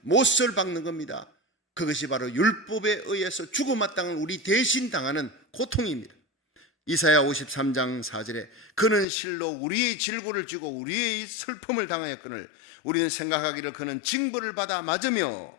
못을 박는 겁니다. 그것이 바로 율법에 의해서 죽어마땅한 우리 대신 당하는 고통입니다. 이사야 53장 4절에 그는 실로 우리의 질고를 지고 우리의 슬픔을 당하였거늘 우리는 생각하기를 그는 징벌을 받아 맞으며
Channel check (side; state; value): right; drops out; at 9.1 s